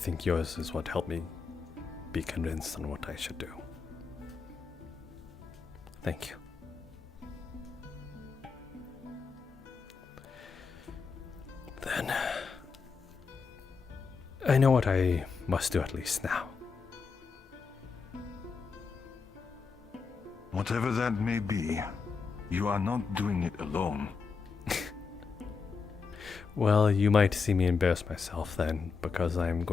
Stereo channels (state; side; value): quieter; right; 5.2 dB